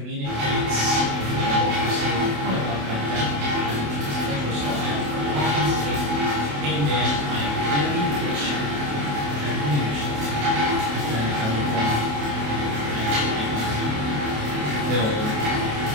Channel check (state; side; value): late; left; 28 ms